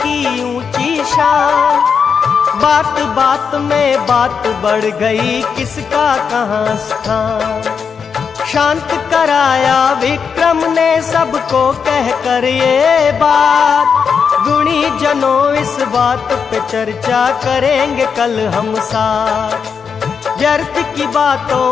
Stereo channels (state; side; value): quieter; right; 6.3 dB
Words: ऊंची शान। बात बात में बात बढ़ गई, किसका कहाँ स्थान। शांत कराया विक्रम ने सबको कहकर ये बात, गुणी जनों इस बात पे चर्चा करेंगे कल हम साथ। व्यर्थ की